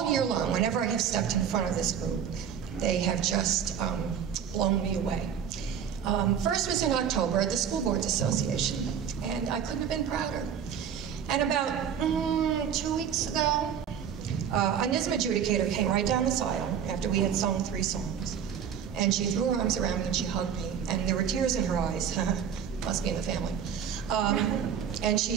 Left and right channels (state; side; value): quieter; left; 8.2 dB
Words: year long. Whenever I have stepped in front of this group, they have just blown me away. First was in October at the School Boards Association, and I couldn't have been prouder. And about 2 weeks ago, a NISM adjudicator came right down this aisle after we had sung 3 songs. And she threw her arms around me and she hugged me, and there were tears in her eyes. Must be in the family. And she